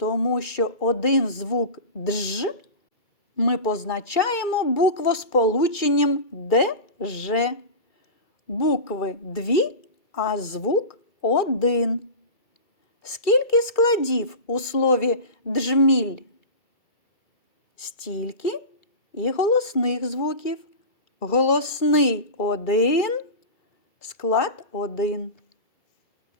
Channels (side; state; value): right; late; 2.3 ms